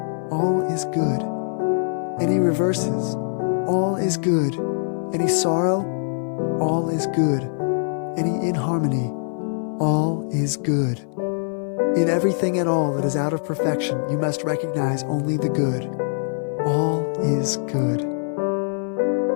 all is good. Any reverses, all is good. Any sorrow, all is good. Any inharmony, all is good. In everything at all that is out of perfection, you must recognize only the good. All is good.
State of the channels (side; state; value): right; silent; 63 dB below the other